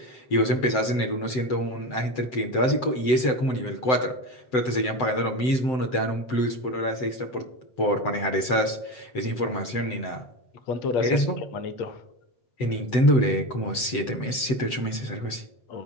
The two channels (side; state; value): right; late; 7.8 ms